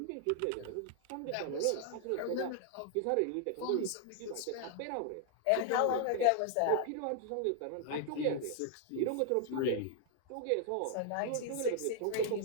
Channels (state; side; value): different; both; correlation 0.00